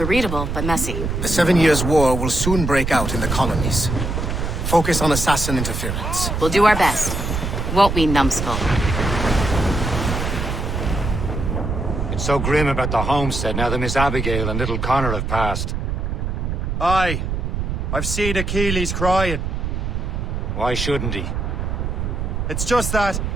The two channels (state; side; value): noise; right; rumble, 2 dB below the sound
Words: readable, but messy. The 7 Years' War will soon break out in the colonies. Focus on assassin interference. We'll do our best. Won't we, numbskull? It's so grim about the homestead now that Miss Abigail and little Connor have passed. Aye. I've seen Achilles crying. Why shouldn't he? It's just that